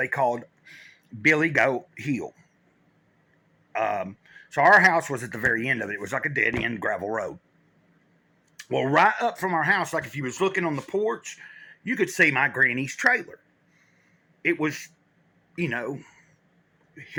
called Billy Goat Hill. So our house was at the very end of it. It was like a dead end gravel road. Well, right up from our house, like if you was looking on the porch, you could see my granny's trailer. It was,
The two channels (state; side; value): identical; both; correlation 1.00